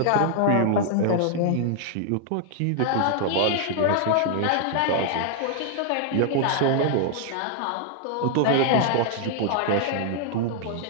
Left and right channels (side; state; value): both; different; correlation -0.01